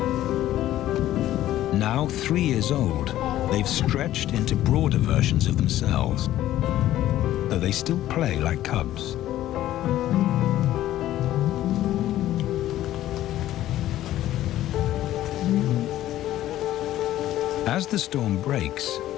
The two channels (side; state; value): right; quieter; 13.6 dB